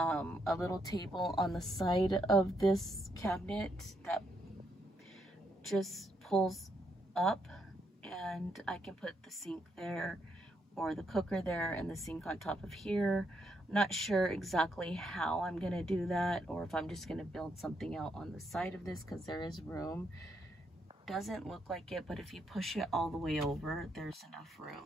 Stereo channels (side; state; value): both; normal; correlation 0.77